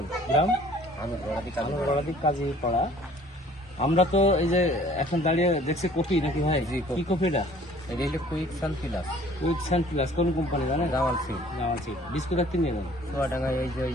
গ্রাম? আমি গড়াদি কাজী পাড়া। আমরা তো এই যে এখন দাঁড়িয়ে দেখছি কফি নাকি ভাই? জি, কফি। কি কফি এটা? এটা হলো quick sun plus with sun plus কোন কোম্পানি জানেন? জামাল সিং জামাল সিড। বিস্কুট একদিন নেবেন চুয়াডাঙ্গায় এই যে ওই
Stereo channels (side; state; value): both; normal; correlation 0.54